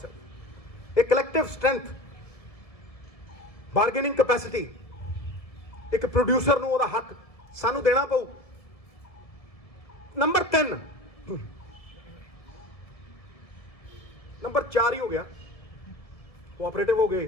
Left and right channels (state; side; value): late; right; 1.7 ms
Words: ਇਹ ਕਲੈਕਟਿਵ ਸਟਰੈਂਥ, ਬਾਰਗੇਨਿੰਗ ਕੈਪੈਸਿਟੀ, ਇੱਕ ਪ੍ਰੋਡਿਊਸਰ ਨੂੰ ਉਹਦਾ ਹੱਕ ਸਾਨੂੰ ਦੇਣਾ ਪਊ। ਨੰਬਰ 3, ਨੰਬਰ 4 ਹੀ ਹੋ ਗਿਆ, ਕੋਆਪਰੇਟਿਵ ਹੋ